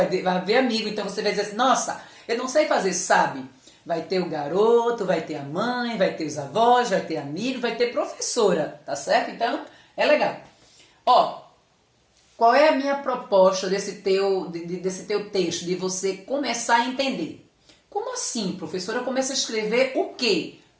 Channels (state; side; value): identical; both; correlation 1.00